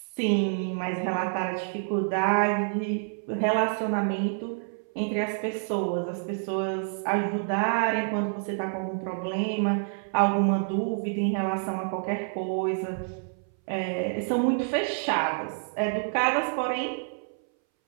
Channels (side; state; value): left; silent; 59 dB below the other